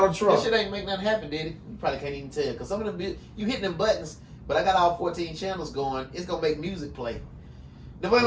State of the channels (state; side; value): identical; both; correlation 1.00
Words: Trump. That shit ain't make nothing happen, did it? You probably can't even tell. Because some of them, you hitting them buttons, but I got all 14 channels going. It's gonna make music play. If